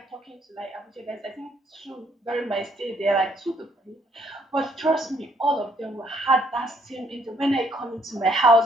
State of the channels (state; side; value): normal; both; correlation 0.68